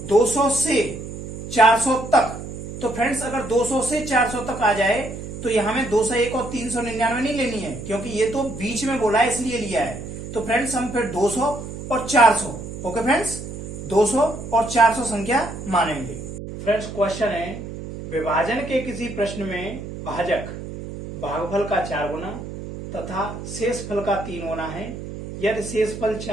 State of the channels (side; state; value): right; noise; hum, 9 dB below the sound